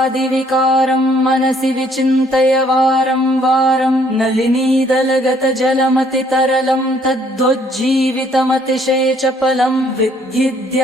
मनसि विचिन्तय वारं वारं नलिनीदलगतजलमतितरलं तद्वज्जीवितमतिशेचपलं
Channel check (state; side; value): normal; both; correlation 0.64